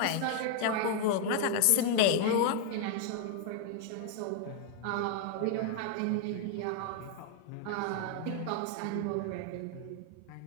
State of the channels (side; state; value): both; different; correlation 0.00